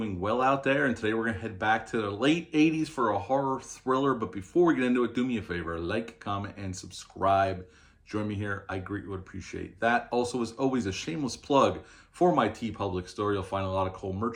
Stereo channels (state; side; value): identical; both; correlation 1.00